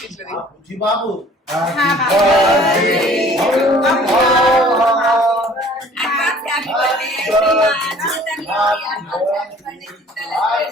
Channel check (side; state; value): both; normal; correlation 0.52